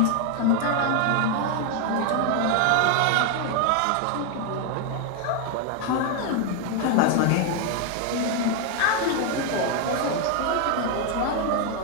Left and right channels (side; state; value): both; different; correlation 0.01